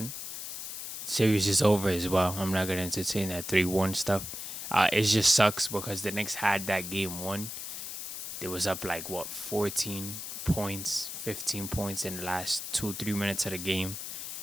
Series is over as well. I'm not gonna entertain that 3-1 stuff. It just sucks because the Knicks had that game 1. They was up like what 14 points, 15 points in the last 2 3 minutes of the game.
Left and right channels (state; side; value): noise; left; hiss, 7 dB below the sound